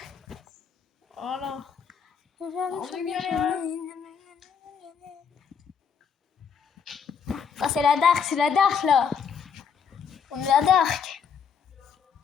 Voilà. Aujourd'hui, On je est suis bien bien là. sonné. Ah, c'est la dark là. On est la dark.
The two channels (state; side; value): quieter; right; 6.8 dB